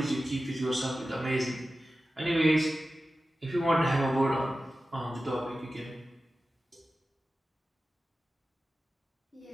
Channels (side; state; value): both; normal; correlation 0.94